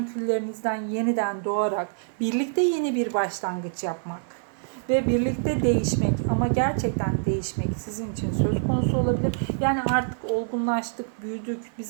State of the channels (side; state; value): left; silent; 58 dB below the other